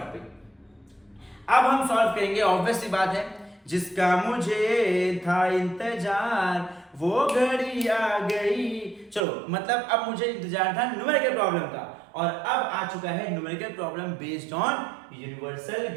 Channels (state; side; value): drops out; left; at 9.2 s